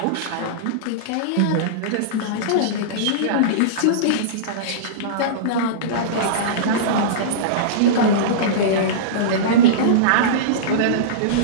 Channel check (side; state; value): both; different; correlation -0.04